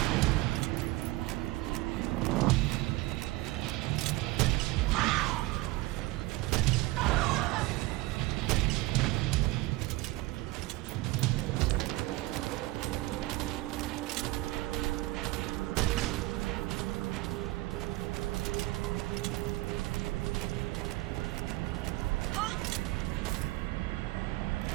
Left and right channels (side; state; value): left; quieter; 20.0 dB